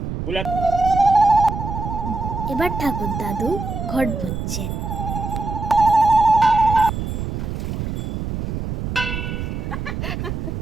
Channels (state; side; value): noise; right; rumble, 4 dB below the sound